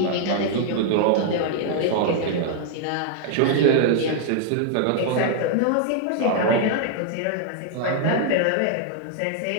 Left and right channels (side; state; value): both; different; correlation 0.00